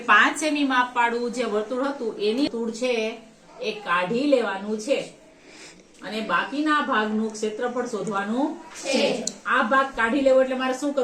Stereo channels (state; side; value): identical; both; correlation 1.00